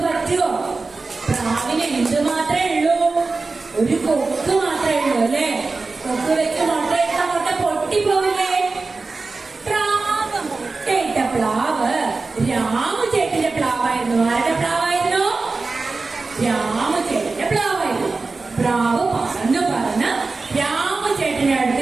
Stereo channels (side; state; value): left; quieter; 3.9 dB